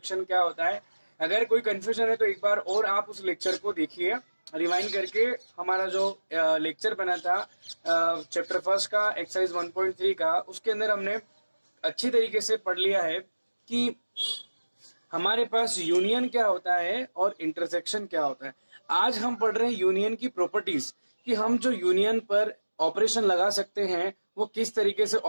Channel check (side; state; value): both; inverted; correlation -1.00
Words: क्या होता है. अगर कोई कंफ्यूजन है तो एक बार और आप उस लेक्चर को देखिए रिवाइंड करके. हमारा जो लेक्चर बना था चैप्टर फर्स्ट का एक्सरसाइज 1.3 का, उसके अंदर हमने अच्छी तरीके से पढ़ लिया है कि हमारे पास यूनियन क्या होता है और इंटरसेक्शन क्या होता है. आज हम पढ़ रहे हैं यूनियन की प्रॉपर्टीज, कि हम जो यूनियन पर ऑपरेशन लगा सकते हैं वो किस तरीके से